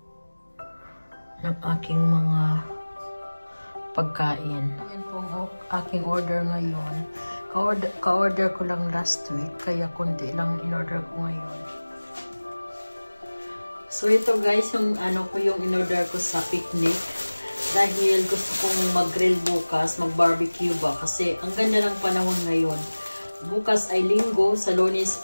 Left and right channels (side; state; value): both; inverted; correlation -1.00